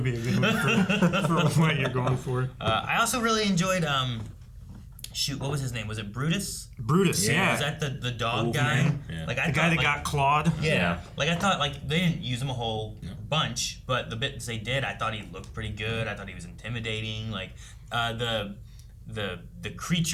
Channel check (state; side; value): identical; both; correlation 1.00